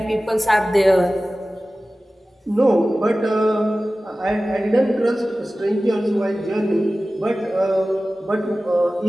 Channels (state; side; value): normal; both; correlation 0.96